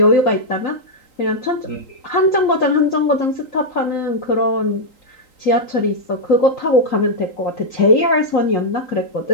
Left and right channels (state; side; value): late; right; 3.9 ms